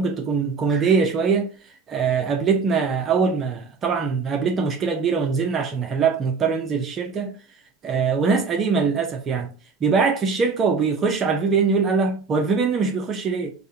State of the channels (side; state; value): left; quieter; 4.9 dB